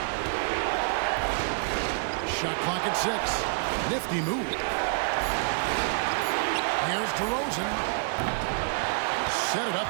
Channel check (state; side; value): silent; left; digital silence